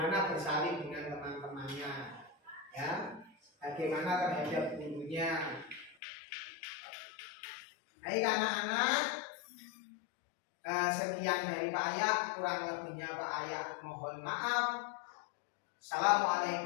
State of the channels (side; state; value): right; drops out; at 6.0 s